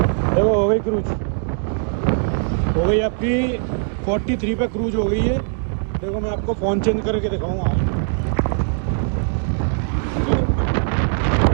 देखो हो गई क्रूज, हो गई आपकी 43 पे क्रूज हो गई है। देखो मैं आपको फ़ोन चेंज करके दिखाऊंगा।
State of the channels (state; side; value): silent; left; digital silence